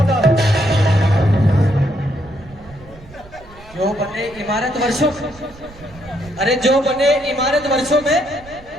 है। जो बने इमारत वर्षों, अरे जो बने इमारत वर्षों में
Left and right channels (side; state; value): right; noise; rumble, 21 dB below the sound